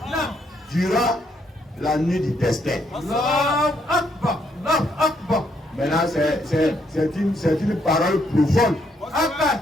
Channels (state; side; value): normal; both; correlation 0.73